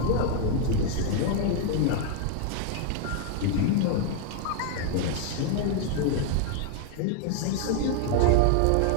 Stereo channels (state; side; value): different; both; correlation 0.00